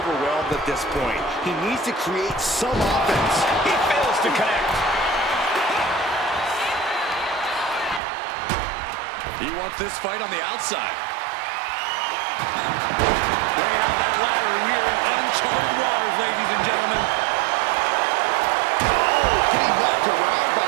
at this point. He needs to create some offense. He fails to connect. He wants this fight on the outside. Bringing out that ladder, and we are in uncharted waters, ladies and gentlemen. Oh, getting knocked around by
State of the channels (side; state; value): left; drops out; at 8.0 s